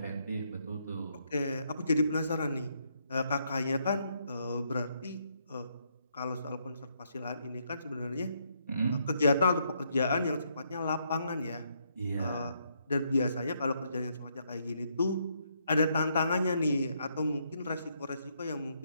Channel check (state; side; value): inverted; both; correlation -0.75